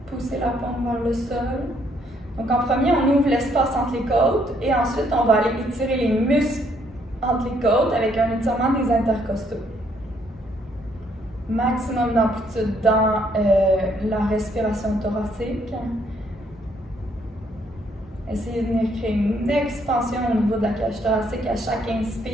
Poussez la paume vers le sol. Donc en premier, on ouvre l'espace entre les côtes et ensuite on va aller étirer les muscles entre les côtes avec un étirement des intercostaux. Maximum d'amplitude dans la respiration thoracique. Essayez de venir créer une expansion au niveau de la cage thoracique à chaque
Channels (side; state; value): both; normal; correlation 0.69